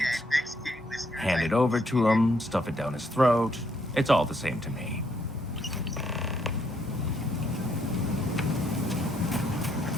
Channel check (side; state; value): both; normal; correlation 0.72